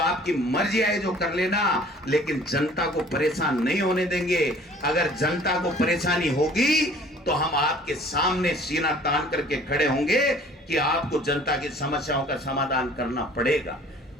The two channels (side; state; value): both; normal; correlation 0.51